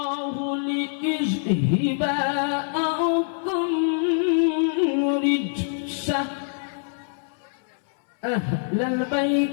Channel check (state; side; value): silent; right; 62 dB below the other